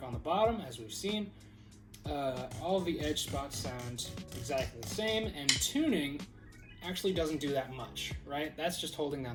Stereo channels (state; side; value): identical; both; correlation 1.00